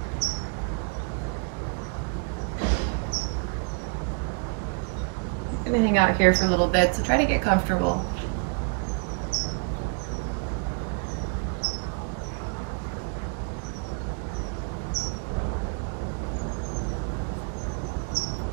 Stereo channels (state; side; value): quieter; left; 38.8 dB